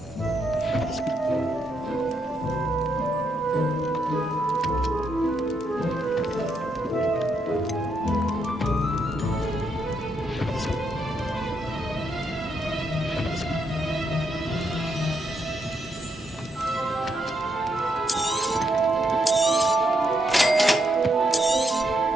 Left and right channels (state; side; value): normal; both; correlation 0.78